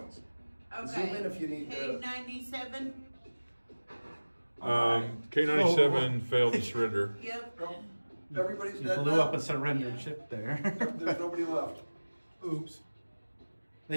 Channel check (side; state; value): both; inverted; correlation -1.00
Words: okay. Zoom in if you need to. K97. K97 failed to surrender. Yep. Everybody's You dead blew now? up a surrendered ship there. There's nobody left. Oops.